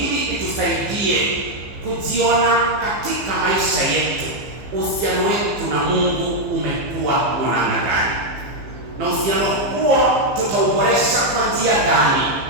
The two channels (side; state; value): left; late; 15 ms